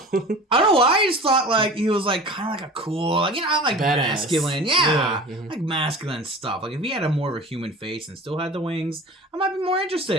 I don't know why. I just thought he was kind of a cool, badass. Masculine, masculine stuff. If he had a more of a human face and still had the wings, I might be more interested.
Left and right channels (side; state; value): both; normal; correlation 0.38